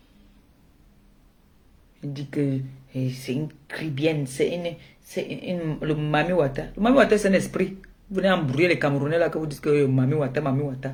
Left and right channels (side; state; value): both; identical; correlation 1.00